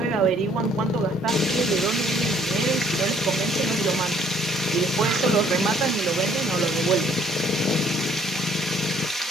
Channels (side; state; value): both; normal; correlation 0.61